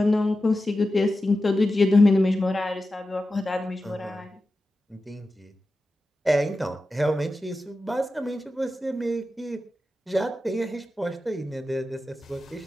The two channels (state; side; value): normal; both; correlation 0.92